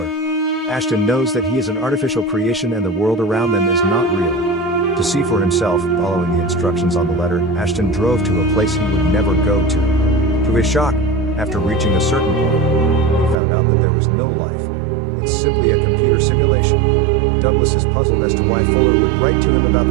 Ashton knows that he is an artificial creation and the world around them is not real. To see for himself, following the instructions on the letter, Ashton drove to a place he would never go to. To his shock, after reaching a certain point, he found out that there was no life. It's simply a computer simulation. Douglas is puzzled as to why Fuller would write to him about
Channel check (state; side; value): drops out; left; at 13.4 s